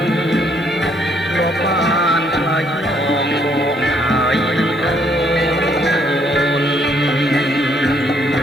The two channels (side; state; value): both; normal; correlation 0.68